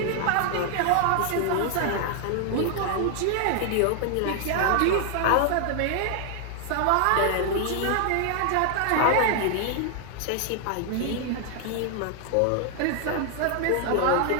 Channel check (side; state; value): both; different; correlation 0.00